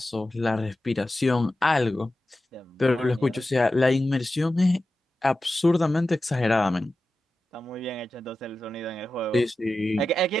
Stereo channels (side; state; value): both; normal; correlation 0.93